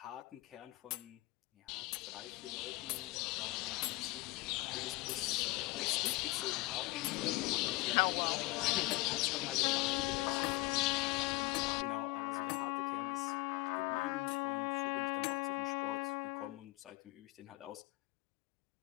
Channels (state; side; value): quieter; right; 21.3 dB